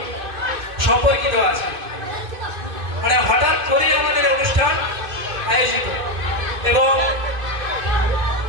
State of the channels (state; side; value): late; left; 2.6 ms